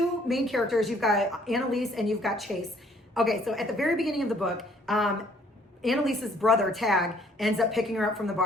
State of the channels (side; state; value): both; normal; correlation 0.62